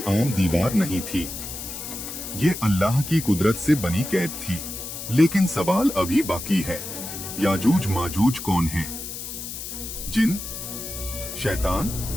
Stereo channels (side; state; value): left; noise; hiss, 8 dB below the sound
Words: आम दीवार नहीं थी, ये अल्लाह की कुदरत से बनी कैद थी। लेकिन सवाल अभी बाकी है, याजूज माजूज कौन है? जिन, शैतान